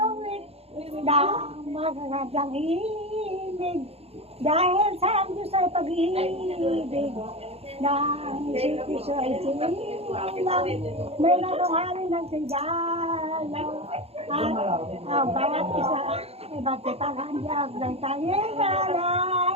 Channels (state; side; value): late; left; 0.29 ms